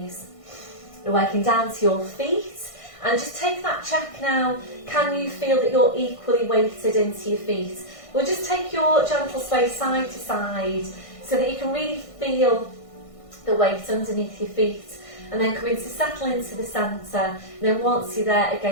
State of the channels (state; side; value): late; right; 1.6 ms